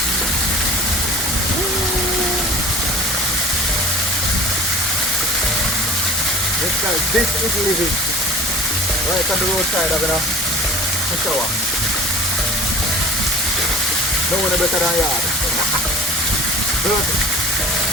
Yes guys, this is living. Right on the roadside having a shower. No one better than yard. Perfect.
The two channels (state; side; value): normal; both; correlation 0.41